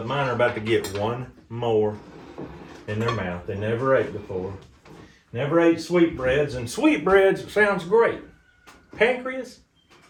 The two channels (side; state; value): both; identical; correlation 1.00